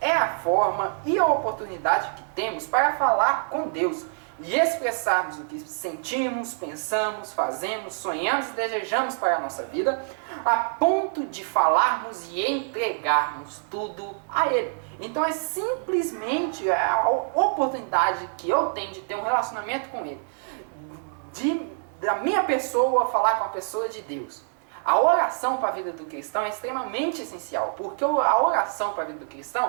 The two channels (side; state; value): left; silent; 61 dB below the other